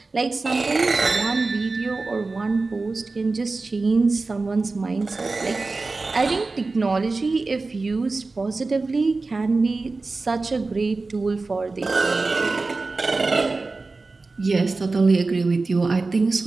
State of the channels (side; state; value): left; quieter; 3.7 dB